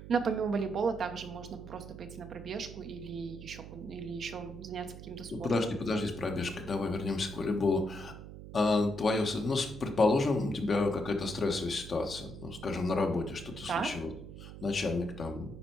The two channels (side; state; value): right; noise; hum, 13 dB below the sound